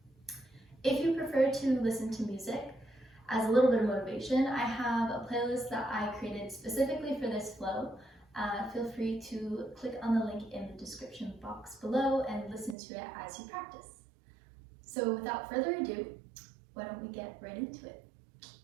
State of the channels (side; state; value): left; drops out; at 12.8 s